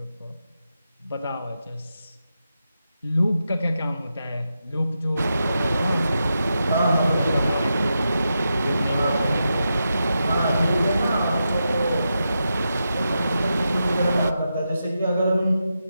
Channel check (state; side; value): inverted; both; correlation -0.87